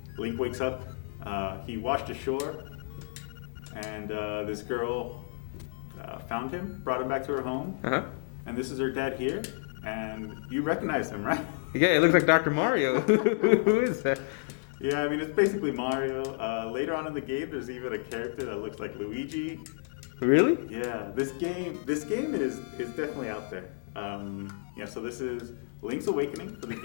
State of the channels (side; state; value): right; silent; digital silence